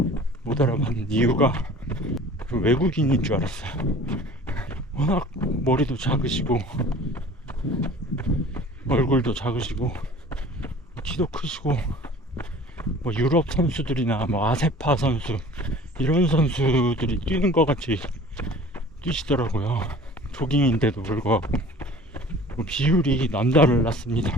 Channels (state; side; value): normal; both; correlation 0.46